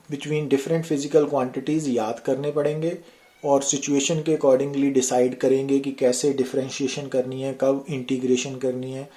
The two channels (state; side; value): identical; both; correlation 1.00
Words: between different physical quantities याद करने पड़ेंगे, और सिचुएशन के अकॉर्डिंगली डिसाइड करेंगे कि कैसे डिफरेंशिएशन करनी है, कब इंटीग्रेशन करनी है।